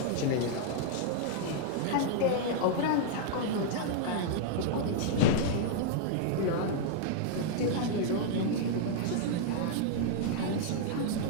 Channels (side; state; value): both; different; correlation -0.01